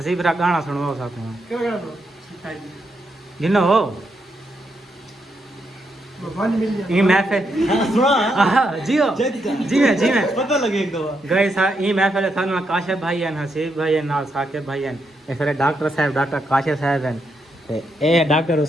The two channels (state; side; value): normal; both; correlation 0.80